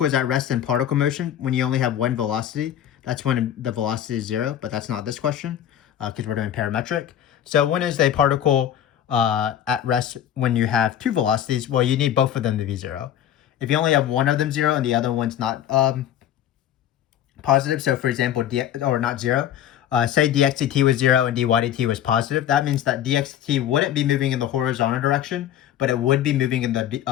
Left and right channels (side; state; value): right; quieter; 10.6 dB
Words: is at rest in particle motion when you only have one velocity. That's when the velocity is 0, but that's not this question because we're doing parametric. So when is a particle at rest when you have 2 velocities? Well, you need both of them to be 0. If you only have one of them 0 and the other one's not positive, so for example, not 0, say dx dt was 0 and dy dt was positive, that means that dx dt wouldn't be moving in the horizontal direction, but it would be moving in